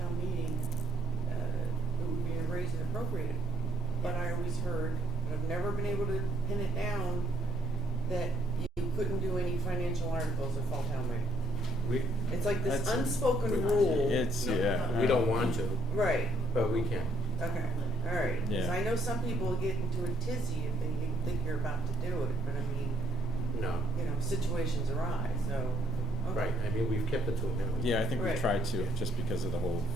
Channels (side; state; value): both; normal; correlation 0.70